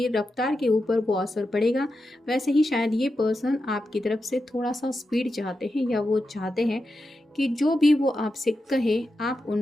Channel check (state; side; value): normal; both; correlation 0.89